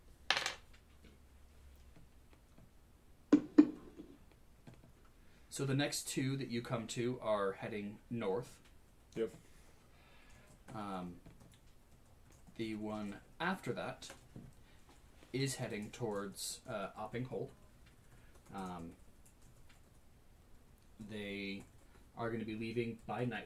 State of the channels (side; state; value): both; identical; correlation 1.00